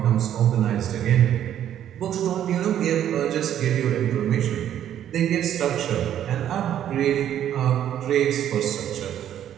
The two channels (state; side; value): quieter; left; 10.7 dB